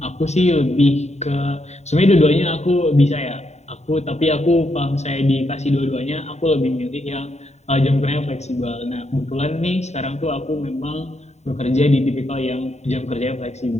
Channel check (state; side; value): late; right; 0.32 ms